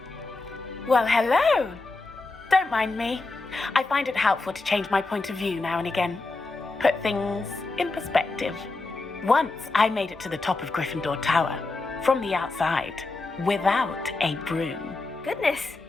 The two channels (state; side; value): quieter; right; 3.4 dB